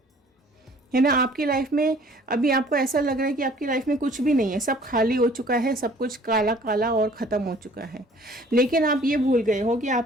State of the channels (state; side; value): normal; both; correlation 0.54